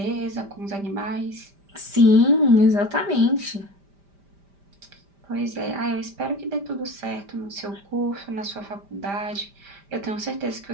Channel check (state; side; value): late; left; 5.1 ms